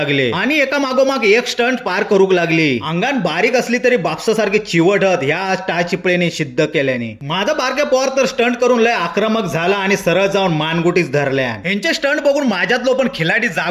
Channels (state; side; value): identical; both; correlation 1.00